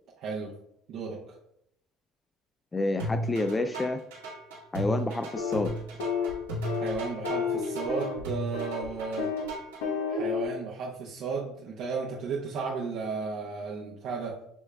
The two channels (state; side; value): normal; both; correlation 0.56